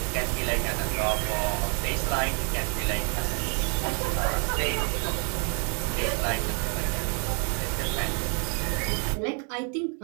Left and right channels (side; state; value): left; quieter; 38.7 dB